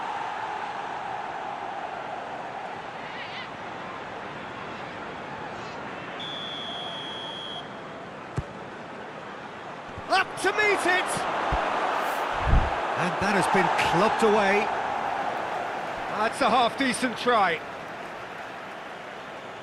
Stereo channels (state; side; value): identical; both; correlation 1.00